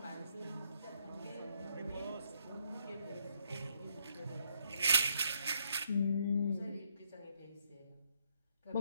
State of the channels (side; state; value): both; inverted; correlation -0.72